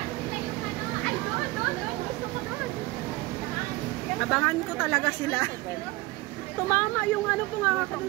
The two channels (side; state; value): left; quieter; 20.8 dB